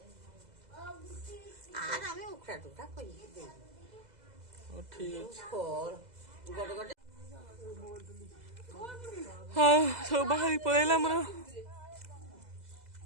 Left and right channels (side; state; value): left; late; 2.0 ms